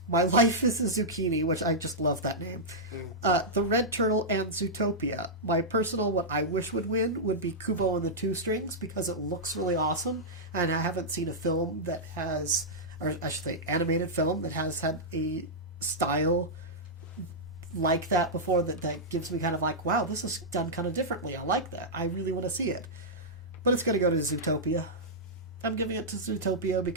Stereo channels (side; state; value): both; normal; correlation -0.10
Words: My Life is a Zucchini, which I just love that name, The Red Turtle, and Zootopia. My personal, what I wish would win would be Kubo and the Two Strings, because it looks really awesome, and I haven't seen a film that has, or I should say animated film, that has had a style like that before that gives me kind of like, wow, this is done kind of differently. I like that. I really want to see it. But it's going to go to Zootopia. I'm giving it to Zootopia